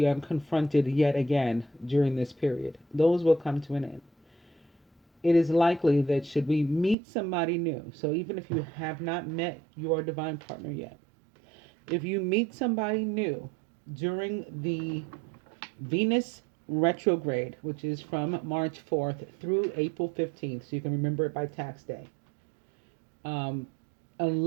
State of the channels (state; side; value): drops out; left; at 7.0 s